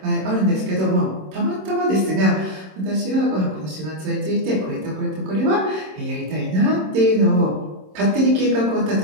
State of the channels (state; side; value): late; left; 26 ms